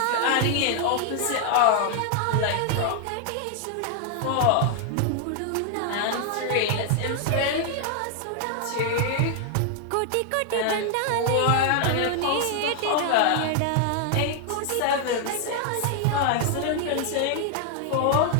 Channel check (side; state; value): both; different; correlation 0.00